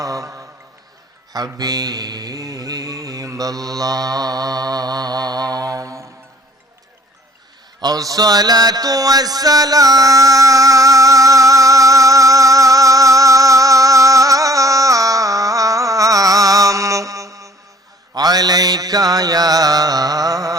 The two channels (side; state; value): both; normal; correlation 0.55